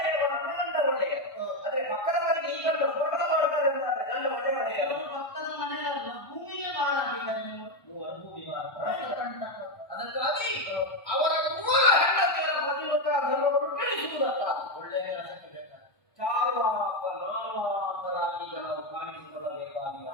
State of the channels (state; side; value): late; right; 1.2 ms